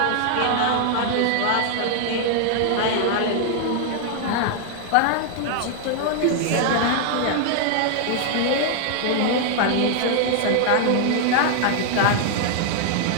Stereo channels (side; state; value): both; different; correlation 0.00